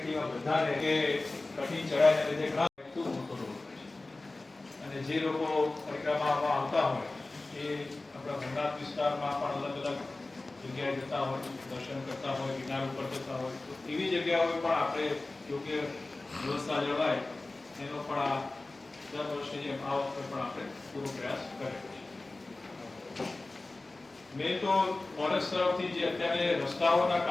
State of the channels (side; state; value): right; quieter; 3.1 dB